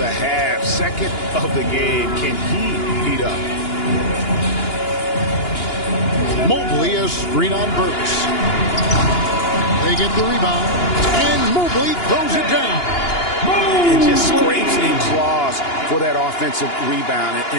half, second of the game. Can he heat up? Mobley a screen on Burks. They get the rebound, and Mobley throws it down. And just scrapes and claws for that offensive rebound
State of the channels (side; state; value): right; late; 2.9 ms